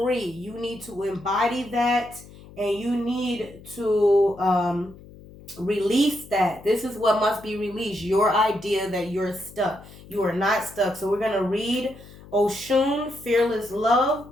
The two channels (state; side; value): noise; left; hum, 20 dB below the sound